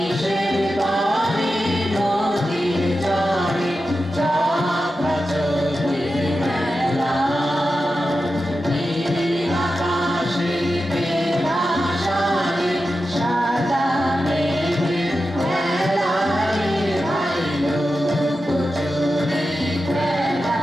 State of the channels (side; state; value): both; normal; correlation 0.91